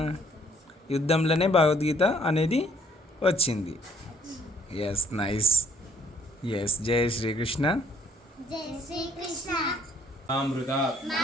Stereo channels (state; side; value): normal; both; correlation 0.63